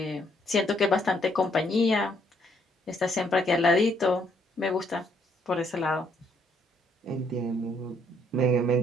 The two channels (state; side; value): normal; both; correlation 0.69